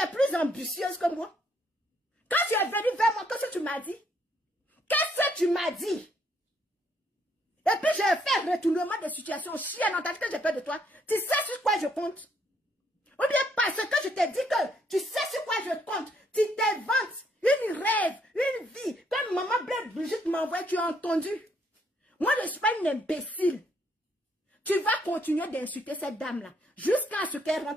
plus ambitieuse que moi. Quand tu es venu vers moi, qu'est-ce que tu m'as dit? que tu m'as dit. Et puis je fais retournement de situation. Chienne, on t'a dit que j'ai peur de toi. Tu sais sur quoi je compte? Ou bien parce que je t'ai dit que tu sais sur quoi je compte. Tu t'inventes une rêve, une vie. Comme maman Blaise Brigitte m'envoie, tu as entendu? Moi, je ne suis pas une imbécile. Tu vas continuer d'insulter cette dame-là jusqu'à ce qu'elle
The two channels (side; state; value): both; normal; correlation 0.70